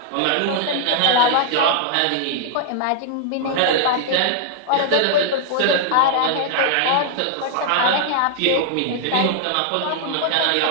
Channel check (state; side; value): different; both; correlation -0.01